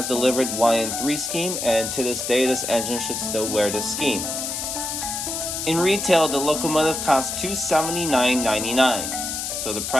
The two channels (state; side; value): noise; left; hiss, 4 dB below the sound